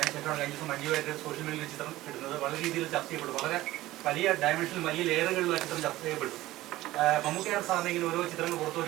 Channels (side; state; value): left; quieter; 16.6 dB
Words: കഴിഞ്ഞ ദിവസം മഞ്ജു വാര്യർ സോഷ്യൽ മീഡിയയിൽ ചിത്രം ഇടുന്നത് വളരെ രീതിയിൽ ചർച്ച ചെയ്യപ്പെട്ടു. വളരെ വലിയ ഡയമെൻഷനിൽ വലിയ ലെയറുകളിൽ ആ ചിത്രം ചർച്ച ചെയ്യപ്പെട്ടു. മമ്മൂക്കയുടെ സാധനം ഇങ്ങനെ ഓരോ ചിത്രങ്ങൾ പുറത്തു